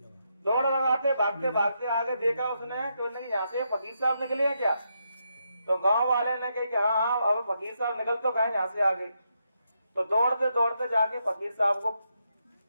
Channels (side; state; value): both; inverted; correlation -0.81